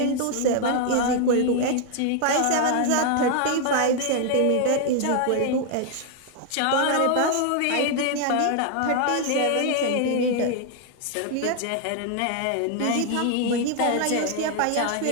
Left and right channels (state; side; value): different; both; correlation 0.00